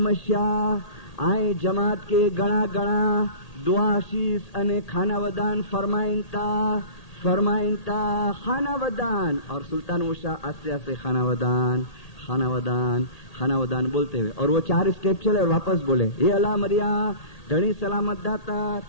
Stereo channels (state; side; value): late; right; 1.8 ms